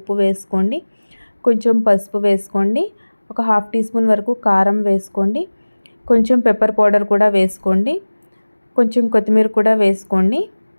వేసుకోండి. కొంచెం పసుపు వేసుకోండి. ఒక 1/2 టీ స్పూన్ వరకు కారం వేసుకోండి. కొంచెం పెప్పర్ పౌడర్ కూడా వేసుకోండి. కొంచెం కొత్తిమీర కూడా వేసుకోండి.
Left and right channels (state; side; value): inverted; both; correlation -1.00